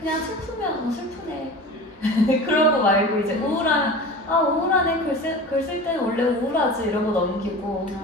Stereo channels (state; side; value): normal; both; correlation 0.35